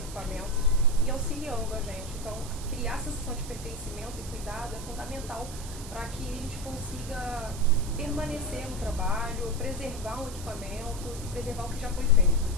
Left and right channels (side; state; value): right; noise; hiss, 13 dB below the sound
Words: e auxiliando a gente. Então, criar essa sensação de pertencimento e cuidado é fundamental para que a gente consiga permanecer no trabalho, preservar um equipamento e preservar o que já foi feito.